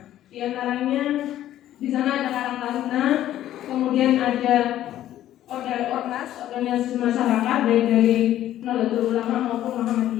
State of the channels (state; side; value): quieter; right; 12.7 dB